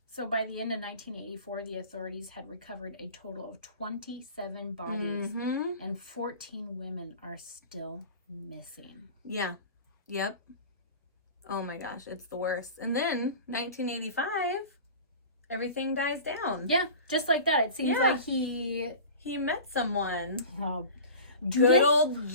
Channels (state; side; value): inverted; both; correlation -0.37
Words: So by the end of 1984, the authorities had recovered a total of 27 bodies, and 14 women are still missing. Yeah. Yep. Oh my gosh, it's the worst. And then 1985, everything dies down. Yeah, just like that. It seems like he met someone. Oh, good old